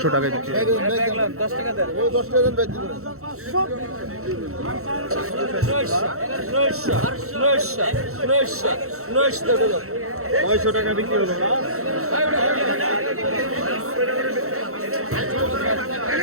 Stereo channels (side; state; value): left; late; 0.63 ms